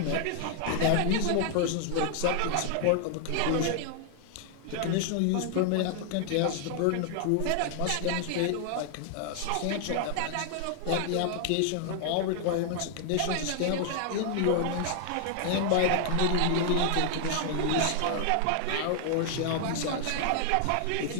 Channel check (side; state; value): both; different; correlation 0.00